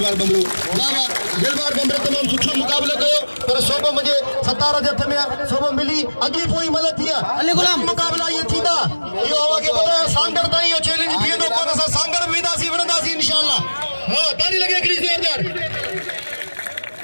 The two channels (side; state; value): both; inverted; correlation -1.00